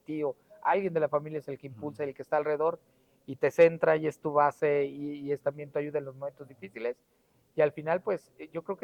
alguien de la familia es el que impulsa, el que está alrededor y te centra y es tu base, y es también tu ayuda en los momentos difíciles. Y al final, pues yo creo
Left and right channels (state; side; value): identical; both; correlation 1.00